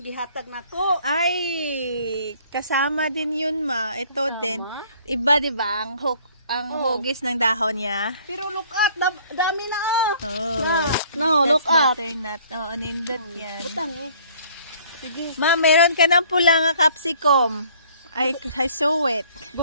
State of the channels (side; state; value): both; inverted; correlation -0.57